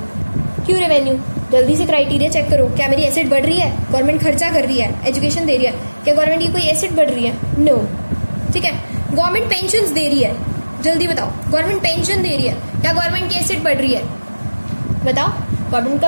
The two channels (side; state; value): both; inverted; correlation -1.00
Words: रेवेन्यू, जल्दी से क्राइटेरिया चेक करो। क्या मेरी एसेट बढ़ रही है, गवर्नमेंट खर्चा कर रही है, एजुकेशन दे रही है, क्या गवर्नमेंट की कोई एसेट बढ़ रही है, नो। ठीक है, गवर्नमेंट पेंशन दे रही है, जल्दी बताओ, गवर्नमेंट पेंशन दे रही है, क्या गवर्नमेंट की एसेट बढ़ रही है, बताओ। गवर्नमेंट